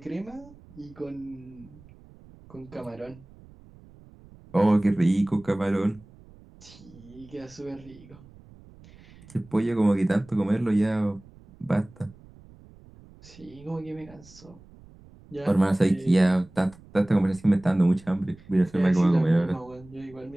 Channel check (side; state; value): right; noise; rumble, 23 dB below the sound